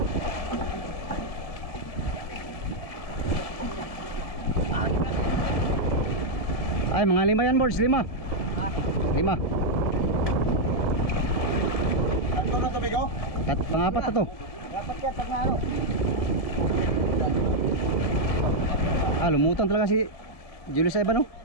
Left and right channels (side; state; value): right; late; 1.9 ms